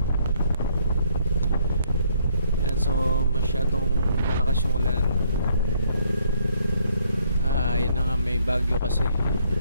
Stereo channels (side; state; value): both; inverted; correlation -0.68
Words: Yan, so masyadong malakas yung ulan. Yun na nga, may bagyo kasi.